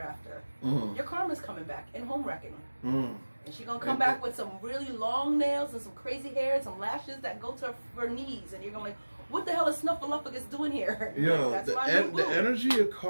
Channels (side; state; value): both; inverted; correlation -1.00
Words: after? Your karma's coming back in home wrecking. And she's going to come back with some really long nails and some crazy hair and some lashes that go to her knees. And you're going to like, what the hell is Snuffleupagus doing here? Yo, like, the energy of